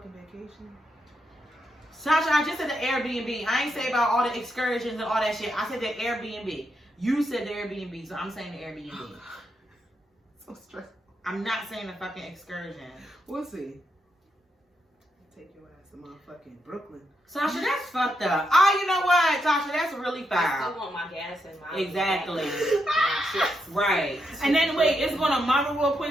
vacation. Sasha, I just said the Airbnb. I ain't say about all the excursions and all that shit. I said the Airbnb. You said the Airbnb, so I'm saying the Airbnb. So stressful. I'm not saying the fucking excursion. We'll see. Take your ass to motherfucking Brooklyn. Sasha, that's fucked up. Oh, you know what, Sasha? That's really I foul. still want my gas and my... Exactly. Right. And then, wait, it's going on my reward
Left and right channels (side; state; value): both; normal; correlation 0.82